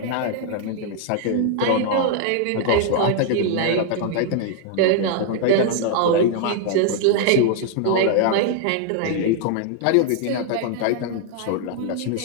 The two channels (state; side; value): different; both; correlation 0.00